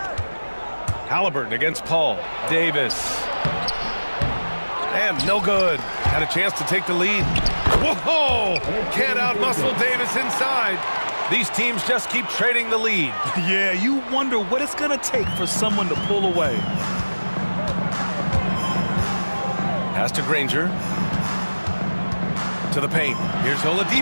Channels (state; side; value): inverted; both; correlation -1.00